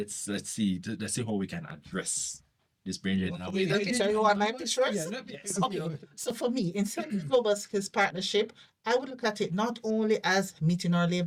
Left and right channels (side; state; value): both; identical; correlation 1.00